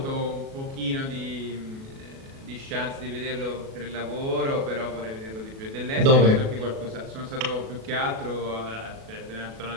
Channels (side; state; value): left; late; 37 ms